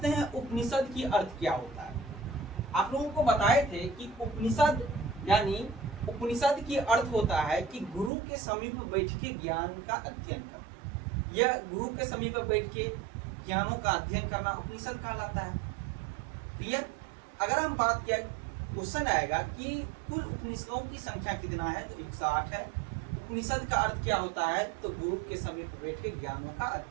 हैं उपनिषद की अर्थ क्या होता है। आप लोगों को बताए थे कि उपनिषद यानी उपनिषद की अर्थ होता है कि गुरु के समीप बैठ के ज्ञान का अध्ययन करना। यह गुरु के समीप बैठ के ज्ञानों का अध्ययन करना उपनिषद कहलाता है। क्लियर? अगर हम बात किया, क्वेश्चन आएगा कि कुल उपनिषदों की संख्या कितना है, तो 108 है। उपनिषद का अर्थ क्या होता है, तो गुरु के समीप बैठ के ज्ञानों का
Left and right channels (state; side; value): drops out; left; at 8.1 s